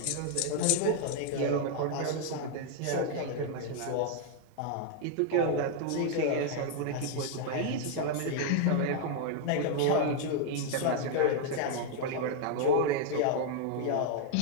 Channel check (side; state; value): both; different; correlation 0.00